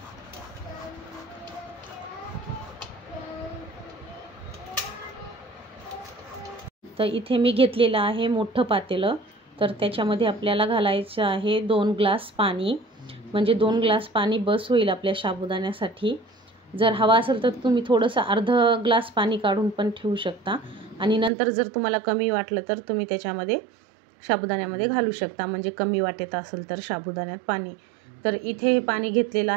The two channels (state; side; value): drops out; left; at 21.3 s